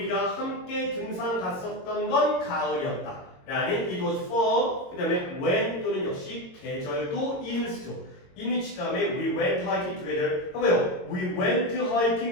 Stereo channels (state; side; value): late; right; 22 ms